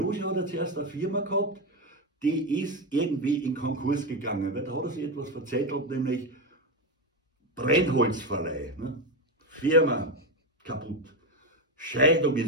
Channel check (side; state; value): both; normal; correlation 0.12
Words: hat ja zuerst eine Firma gehabt, die ist irgendwie in Konkurs gegangen. Weil da hat er sich etwas verzettelt, nämlich Brennholzverleih. Ne? Firma kaputt. Scheidung